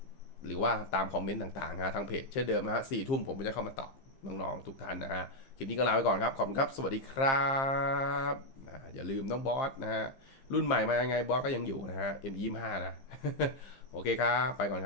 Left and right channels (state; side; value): late; right; 15 ms